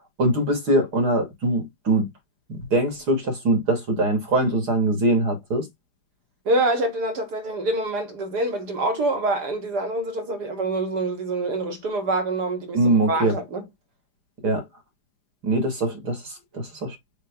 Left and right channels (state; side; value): late; left; 4.9 ms